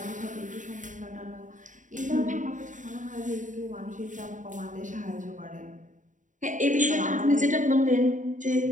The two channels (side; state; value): left; late; 0.37 ms